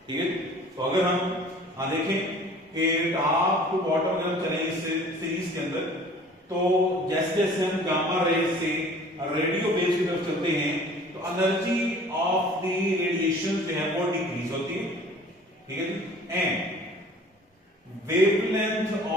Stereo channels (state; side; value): normal; both; correlation 0.48